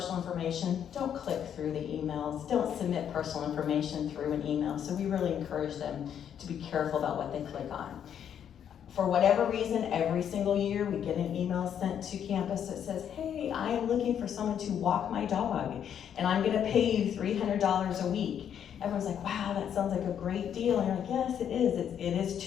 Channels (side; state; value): right; quieter; 9.0 dB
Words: information, don't click through the emails. Don't submit personal information through an email. So we really encourage them to be careful about what they click on. For whatever reason, every single year we get an email sent to campus that says, hey, I am looking for someone to walk my dog, and I'm gonna pay you $300 a week. Everyone's like, wow, that sounds like a great deal. And you're like, yes, it is. It is